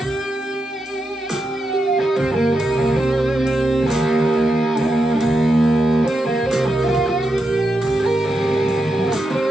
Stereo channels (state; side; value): normal; both; correlation 0.86